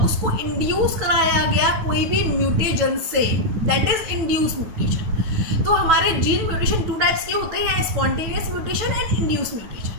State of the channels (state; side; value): late; left; 9.3 ms